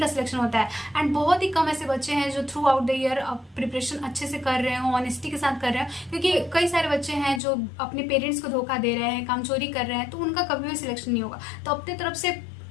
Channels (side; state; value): right; drops out; at 7.4 s